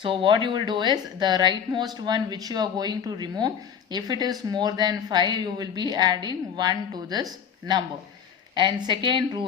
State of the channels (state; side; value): quieter; right; 7.7 dB